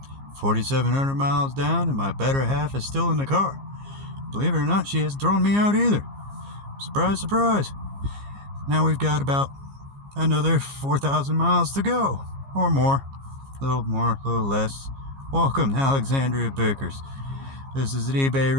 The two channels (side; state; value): left; late; 15 ms